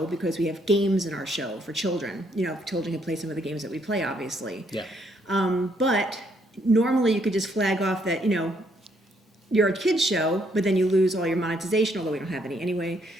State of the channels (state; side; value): normal; both; correlation 0.71